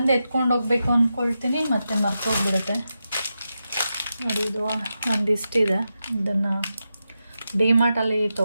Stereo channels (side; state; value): both; inverted; correlation -0.89